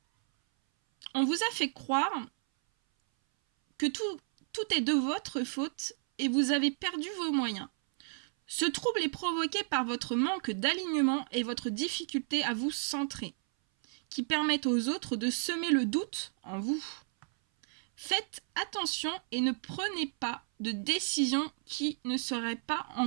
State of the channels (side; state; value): left; silent; 56 dB below the other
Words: On vous a fait croire que tout est de votre faute et vous avez perdu vos moyens. Ce trouble est provoqué par votre manque d'alignement et votre difficulté à vous centrer, qui permettent aux autres de semer le doute en vous. Faites attention et ne prenez pas de décisions qui ne seraient pas